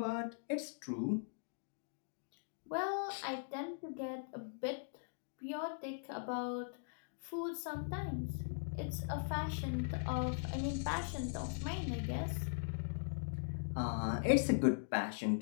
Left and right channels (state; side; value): silent; right; digital silence